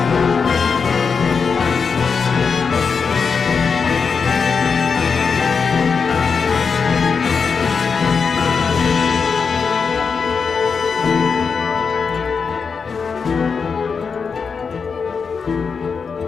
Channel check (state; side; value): quieter; right; 5.5 dB